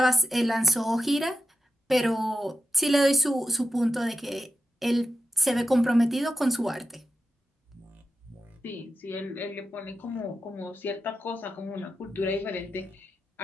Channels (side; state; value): both; normal; correlation 0.88